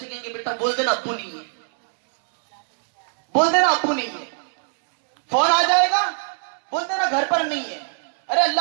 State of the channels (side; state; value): left; silent; digital silence